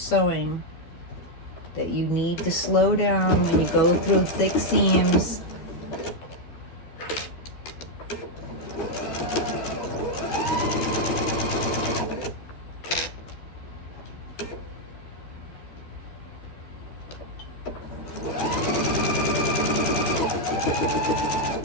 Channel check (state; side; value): late; right; 13 ms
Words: that you need to slow down when you go through thick seams.